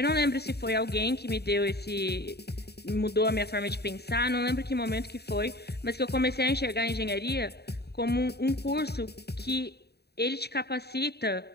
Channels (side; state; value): right; late; 0.47 ms